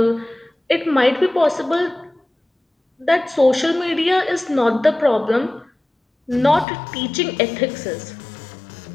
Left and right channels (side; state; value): right; drops out; at 6.7 s